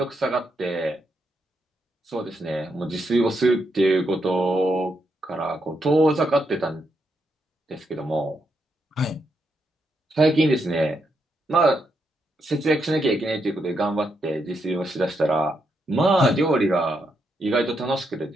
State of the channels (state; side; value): normal; both; correlation 0.80